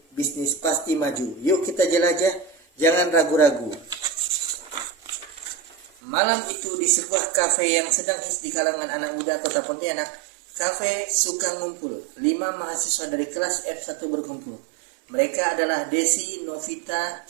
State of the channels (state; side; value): drops out; left; at 5.9 s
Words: bisnis pasti maju. Yuk kita jelajah, jangan ragu-ragu. Malam itu di sebuah kafe yang sedang hits di kalangan anak muda kota Pontianak, kafe suka ngumpul. 5 mahasiswa dari kelas F1 berkumpul. Mereka adalah Desi, Novita,